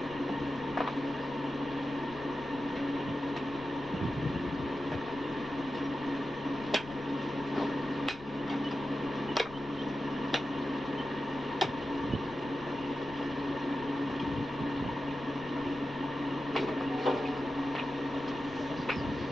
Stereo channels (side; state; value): left; noise; rumble, 17 dB below the sound